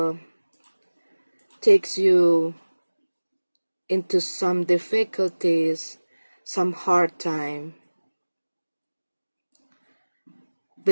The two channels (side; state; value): both; inverted; correlation -1.00